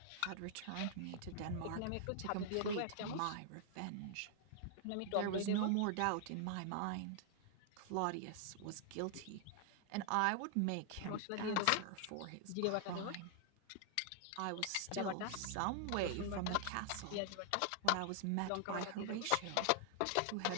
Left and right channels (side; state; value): both; different; correlation 0.00